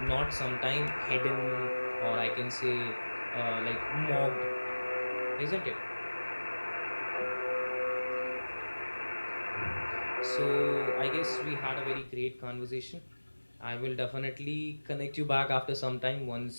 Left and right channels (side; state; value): both; inverted; correlation -1.00